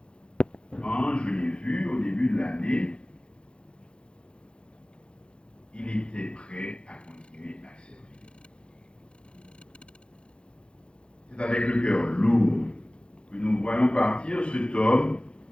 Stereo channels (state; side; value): late; right; 0.056 ms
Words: Quand je l'ai vu au début de l'année, il était prêt à continuer à servir. C'est avec le cœur lourd que nous voyons partir cet homme